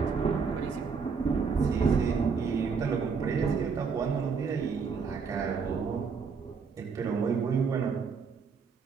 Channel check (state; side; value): quieter; left; 5.5 dB